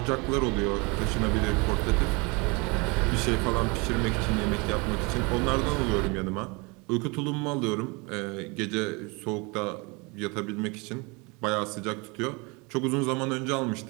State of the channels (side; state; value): left; quieter; 28.4 dB